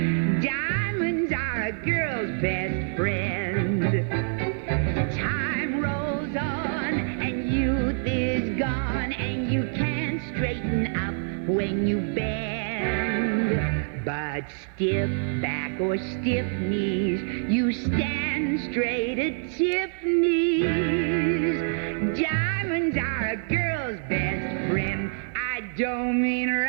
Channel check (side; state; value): left; silent; digital silence